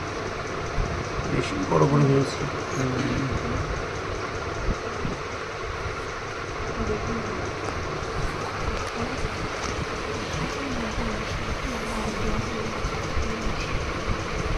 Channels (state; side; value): identical; both; correlation 1.00